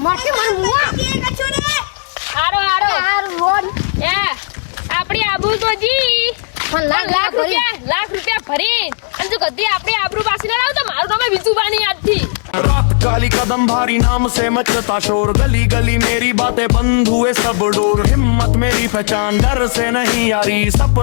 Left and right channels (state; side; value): silent; right; digital silence